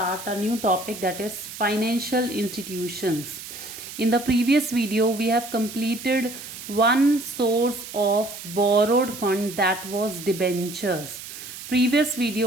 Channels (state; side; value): noise; right; hiss, 12 dB below the sound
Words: a new topic, that is financial institutions. In the previous video, we have completed one source of borrowed fund, that was debentures. Previous